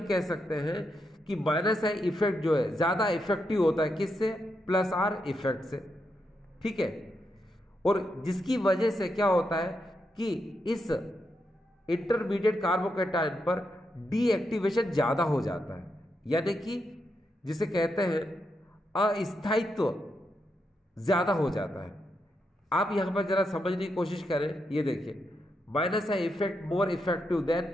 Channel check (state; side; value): normal; both; correlation 0.83